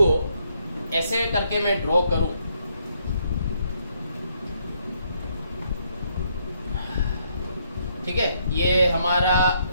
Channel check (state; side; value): inverted; both; correlation -0.72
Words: ऐसे करके मैं ड्रॉ करूं, ठीक है, ये हमारा